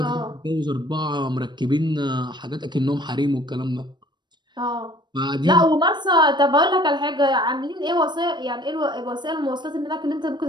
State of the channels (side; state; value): left; late; 0.22 ms